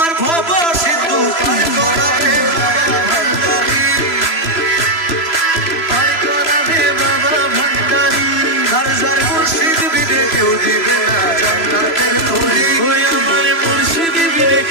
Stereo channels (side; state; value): right; late; 3.0 ms